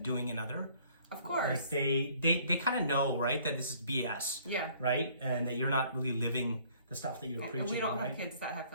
doing another. Of course. Like they kind of know, right, that this is BS. Yeah. Right? And that you're not really living the stuff that you're preaching, and we don't right? have kids that have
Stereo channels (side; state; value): both; inverted; correlation -0.59